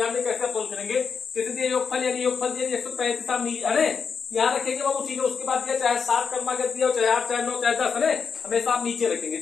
में कैसे सोल्व करेंगे। जैसे दिया योगफल, यानी योगफल दिया 135, अरे यहाँ रखेंगे बाबू। ठीक है, उसके बाद दिया चाहे 7 क्रमांक दिया, चाहे 8, चाहे 9, चाहे 10, है हमेशा आप नीचे रखेंगे।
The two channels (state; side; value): quieter; right; 6.0 dB